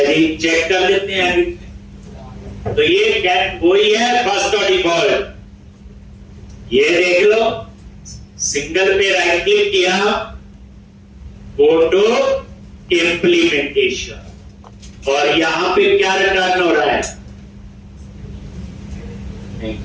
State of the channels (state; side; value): identical; both; correlation 1.00